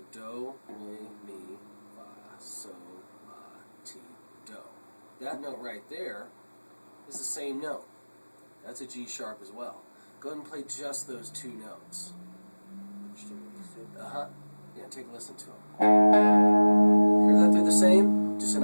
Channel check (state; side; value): inverted; both; correlation -1.00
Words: do, re, mi, fa, sol, la, ti, do. That note right there is the same note. That's a G sharp as well. Go ahead and play just those two notes. Uh-huh. Yeah, take a listen to them. Hear that they're the same? Just an